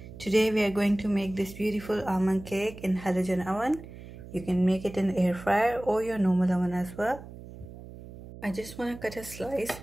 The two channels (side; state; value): right; noise; hum, 15 dB below the sound